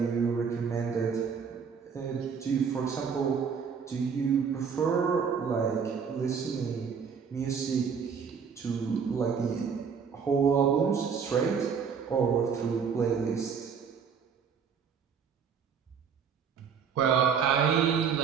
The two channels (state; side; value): quieter; left; 6.5 dB